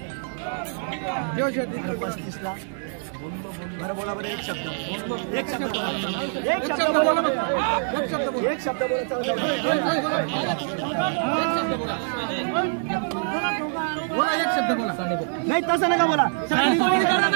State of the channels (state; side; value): silent; left; 62 dB below the other